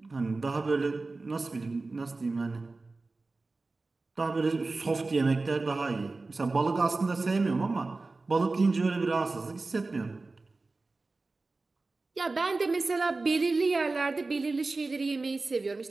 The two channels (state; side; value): quieter; left; 3.5 dB